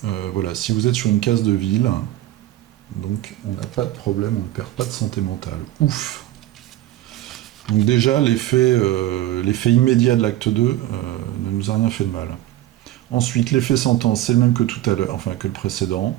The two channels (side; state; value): left; quieter; 14.5 dB